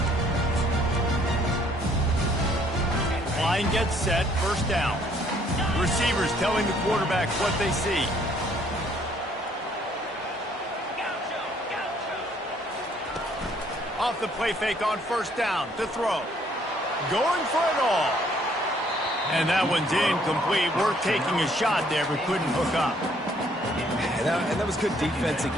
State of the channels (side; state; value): both; normal; correlation 0.64